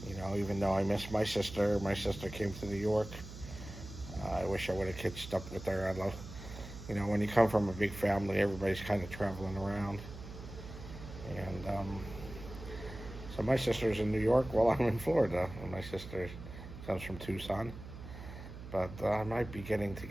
You know, even though I miss my sister came to New York. I wish I would have catched up with her. You know, when you come from a big family, everybody's kind of traveling around. And so my sister's in New York while I'm in Florida. And my sister comes from Tucson. But I might be getting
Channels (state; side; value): noise; right; hum, 12 dB below the sound